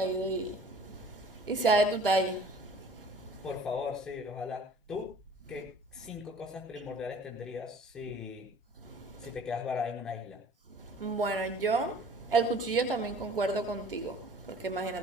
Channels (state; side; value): normal; both; correlation 0.49